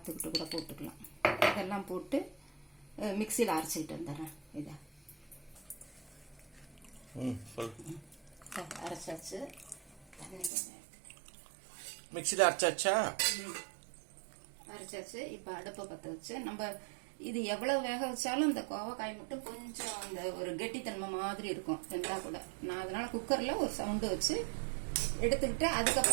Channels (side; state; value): left; drops out; at 10.5 s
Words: கூட போட்டுக்கலாம். இதெல்லாம் போட்டு மிக்சியில் அரைச்சிக்கிட்டு வந்துடுறேன். இதை அரைச்சாச்சு, மிக்சியில் அரைச்சாச்சு. இப்போ அடுப்பை பற்ற வச்சு நம்ம இது எவ்வளவு வேக வச்சாலும் இந்த கோவக்காய் மட்டும் கொஞ்சம் அந்த ஒரு கெட்டித்தன்மை மாதிரி இருக்கும் இருந்தால் கூட. நான் அதனால குக்கரில் ஒரு சவுண்டு வச்சு எடுத்துக்கிட்டு